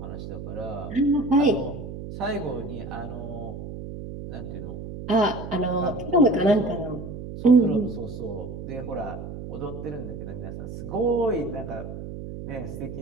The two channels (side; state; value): right; noise; hum, 9 dB below the sound